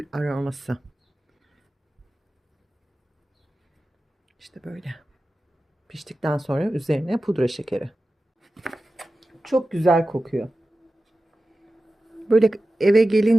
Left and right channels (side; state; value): both; normal; correlation 0.94